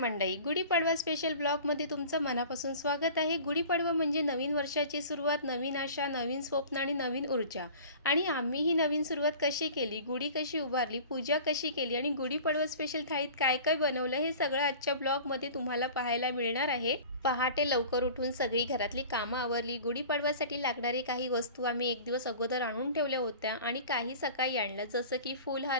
गुढीपाडवा स्पेशल ब्लॉगमध्ये तुमचं मनापासून स्वागत आहे। गुढीपाडवा म्हणजे नवीन वर्षाची सुरुवात, नवीन आशा, नवीन स्वप्न आणि नवीन ऊर्जा। आणि आम्ही ही नवीन सुरुवात कशी केली, गुढी कशी उभारली, पूजा कशी केली आणि गुढीपाडवा स्पेशल थाळीत काय काय बनवलं हे सगळं आजच्या ब्लॉगमध्ये तुम्हाला पाहायला मिळणार आहे। पहाटे लवकर उठून सगळी घरातली कामं आवरली। गुढीपाडव्यासाठी लागणारी काही वस्तू आम्ही एक दिवस अगोदर आणून ठेवल्या होत्या आणि काही सकाळी आणल्या, जसं की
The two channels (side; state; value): both; inverted; correlation -0.42